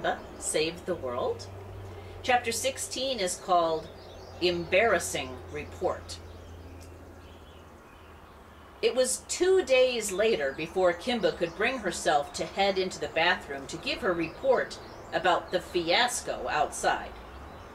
Saved the World. Chapter 16 is called Embarrassing Report. It was 2 days later before Kimba could bring herself to head into the bathroom to give her report about the fiasco outside.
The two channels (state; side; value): identical; both; correlation 1.00